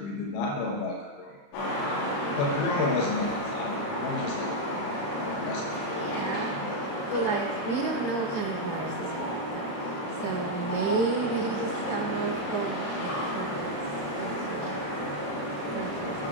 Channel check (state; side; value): late; right; 35 ms